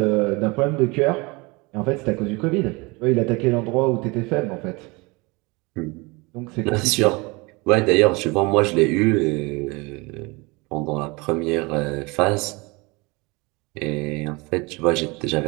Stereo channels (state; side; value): quieter; left; 26.1 dB